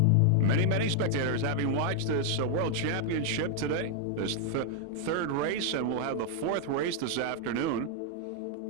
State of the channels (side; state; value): both; different; correlation 0.00